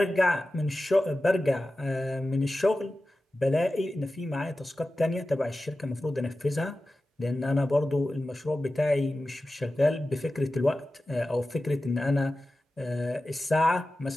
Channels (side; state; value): both; normal; correlation 0.94